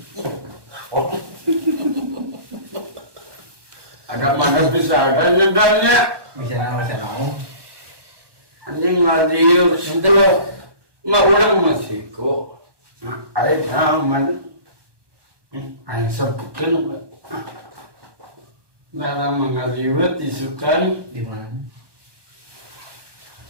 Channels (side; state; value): left; late; 1.2 ms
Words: Ada mana bisa ada nyedanya. Bisa nama saya nong. Anjing ngadiu situ loh. Nggak orang masih kok. Ayo aman. Ayo sebutkan. Dalam mengaliwat disukan. Di mana?